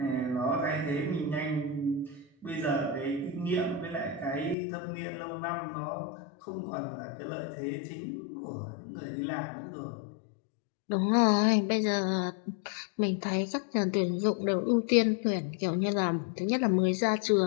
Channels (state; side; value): drops out; right; at 4.5 s